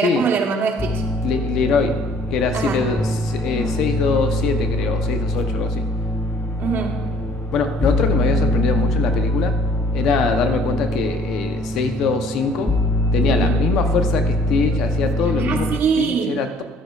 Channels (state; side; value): normal; both; correlation 0.57